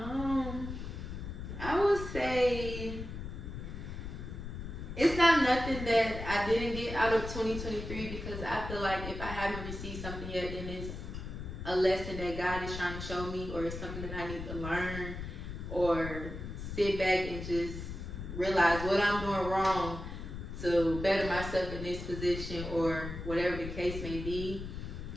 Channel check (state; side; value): noise; left; rumble, 7 dB below the sound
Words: I would say it's not nothing that I didn't get out of 2023, because I feel like if I haven't received something yet, then it's a lesson that God is trying to show me, or it's something that I need to learn, or sit back and just realize what I'm doing wrong to better myself in this position, or whatever the case may be.